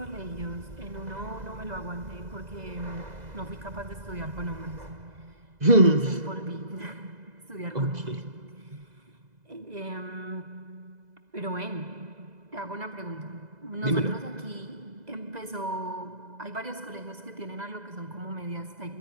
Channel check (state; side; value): late; left; 2.0 ms